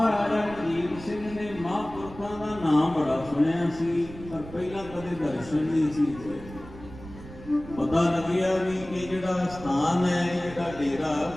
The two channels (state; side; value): noise; right; rumble, 15 dB below the sound